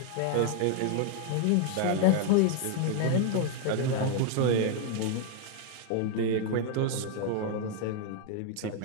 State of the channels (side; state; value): both; different; correlation 0.00